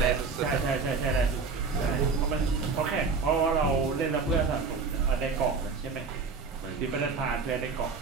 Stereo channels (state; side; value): quieter; left; 4.7 dB